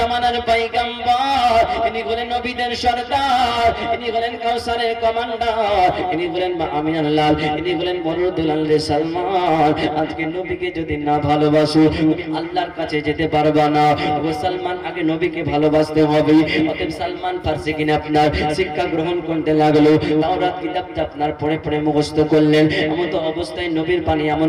পয়গম্বর, ইনি হলেন নবীদের সরদার, ইনি হলেন কাউসারের কমান্ডার, ইনি হলেন মা আমিনার লাল, ইনি হলেন মরুদুল আল সালমান। আজকে নবীকে যদি না ভালোবাসো, তুমি আল্লাহর কাছে যেতে পারবা না। ও সালমান, আগে নবীকে ভালোবাসতে হবে। অতএব সালমান ফার্সি কিনে আপনার শিক্ষা গ্রহণ করতে লাগলো। তাওরাত কিতাবটা আপনার পড়ে পড়ে মুখস্থ করলেন। এমন তো অবস্থায় নবীর পানি,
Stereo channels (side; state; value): both; identical; correlation 1.00